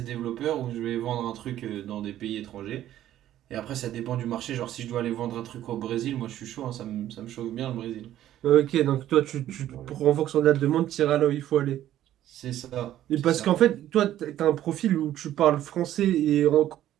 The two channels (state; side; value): quieter; left; 12.6 dB